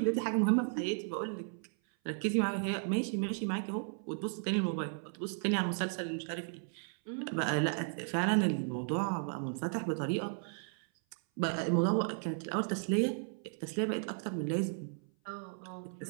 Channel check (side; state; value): left; silent; 55 dB below the other